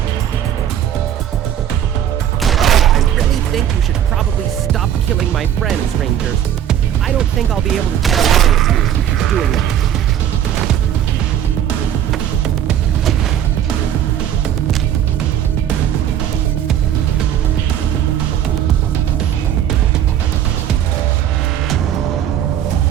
I really think you should probably stop killing my friends, Rangers. I don't think I'll be able to get along with you if you keep doing that.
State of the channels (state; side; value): quieter; left; 10.3 dB